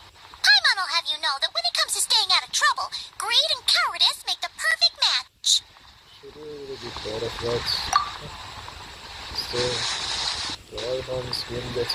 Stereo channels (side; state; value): both; identical; correlation 1.00